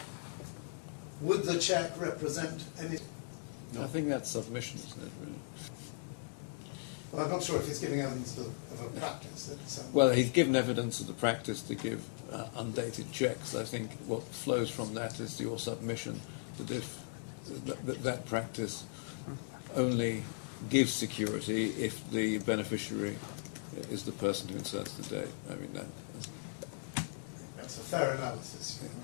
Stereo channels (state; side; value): silent; right; digital silence